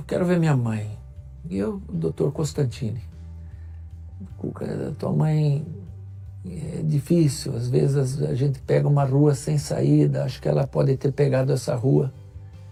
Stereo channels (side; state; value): both; identical; correlation 1.00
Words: quero ver minha mãe. E eu, o doutor Constantini. Cuca, tua mãe é difícil, às vezes a gente pega uma rua sem saída, acho que ela pode ter pegado essa rua.